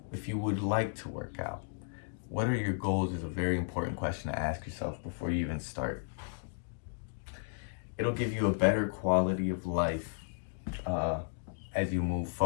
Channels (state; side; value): silent; right; digital silence